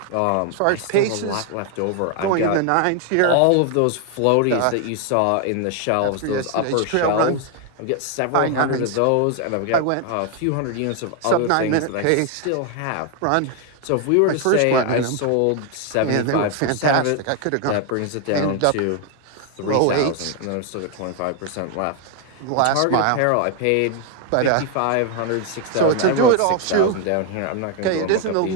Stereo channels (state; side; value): different; both; correlation 0.00